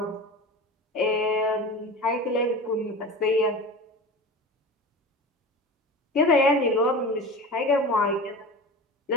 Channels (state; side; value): normal; both; correlation 0.32